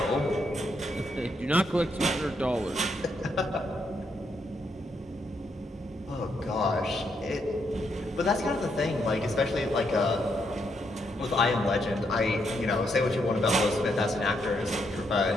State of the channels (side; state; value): both; normal; correlation 0.77